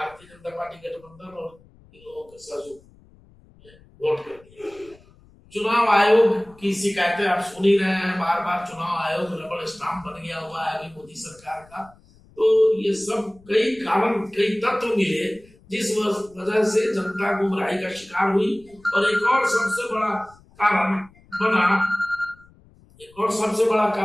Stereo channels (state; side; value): noise; left; rumble, 27 dB below the sound